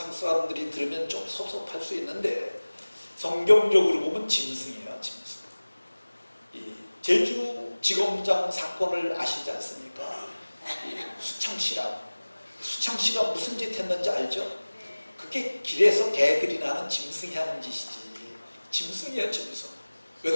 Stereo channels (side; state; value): both; inverted; correlation -1.00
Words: 사람들이 들으면 좀 섭섭할 수 있는데, 성경적으로 보면 짐승이에요. 짐승. 이 제주지검장 사건을 아시지 않습니까? 수창씨가 무슨 짓 했는지 알죠? 그게 길에서 개들이나 하는 짐승이 하는 짓이지. 짐승이에요, 짐승. 왜